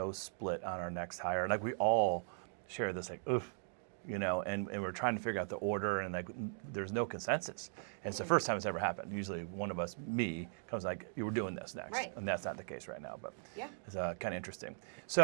split on our next hire. Like, we all share this, like, oof, and we're trying to figure out the order, and like, there's no consensus. And it's the first time it's ever happened. Usually one of us, me, comes like, you were doing this next. Right. And that's not the case right now, but Yeah. it's kind of interesting.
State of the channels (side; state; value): left; silent; digital silence